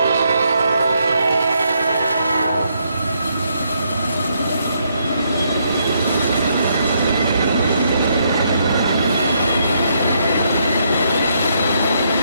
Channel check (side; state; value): both; inverted; correlation -0.75